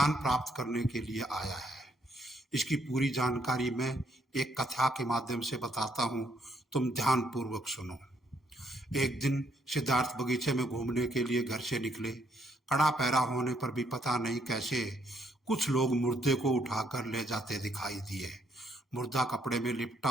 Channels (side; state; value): both; normal; correlation 0.71